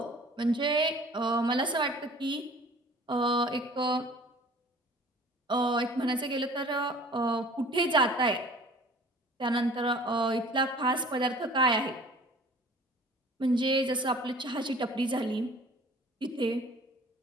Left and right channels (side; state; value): both; normal; correlation 0.48